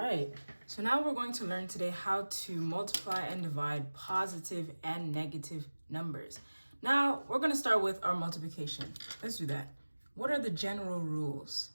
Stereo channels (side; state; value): both; inverted; correlation -1.00